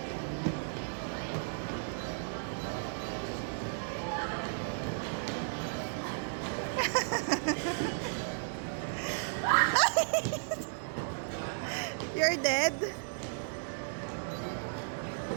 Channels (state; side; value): silent; left; 55 dB below the other